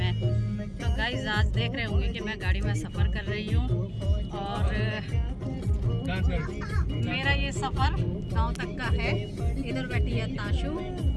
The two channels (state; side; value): identical; both; correlation 1.00